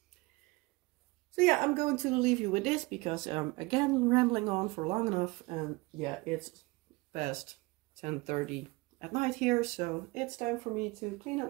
So yeah, I'm going to leave you with this because I'm again rambling on for long enough, and yeah, it's past 10:30 at night here, so it's time for me to clean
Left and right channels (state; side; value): quieter; left; 24.0 dB